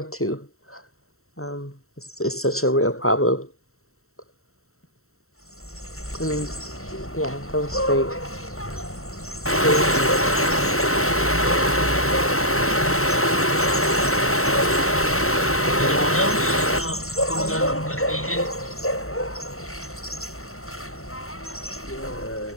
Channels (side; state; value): right; late; 0.63 ms